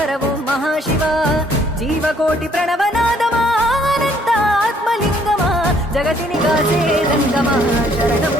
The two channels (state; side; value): normal; both; correlation 0.64